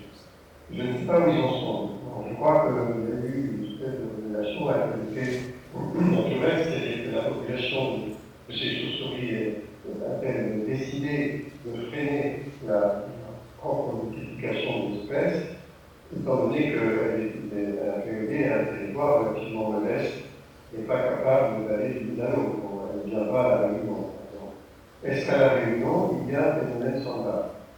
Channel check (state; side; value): identical; both; correlation 1.00